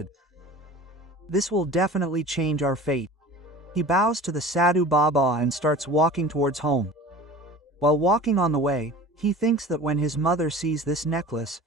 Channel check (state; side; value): normal; both; correlation 0.40